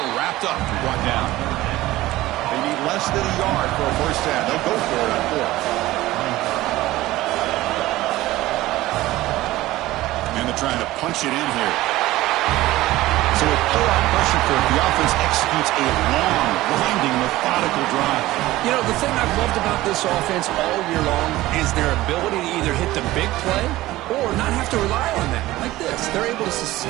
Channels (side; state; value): left; quieter; 17.1 dB